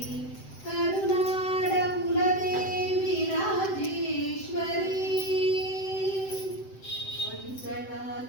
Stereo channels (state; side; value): late; right; 7.8 ms